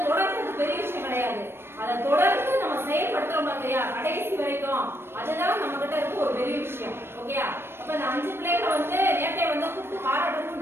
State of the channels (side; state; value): left; late; 0.12 ms